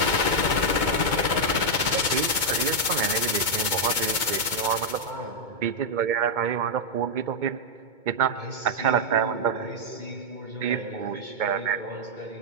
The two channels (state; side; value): late; left; 2.2 ms